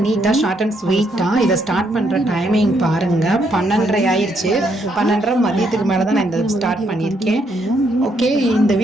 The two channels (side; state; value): both; normal; correlation 0.74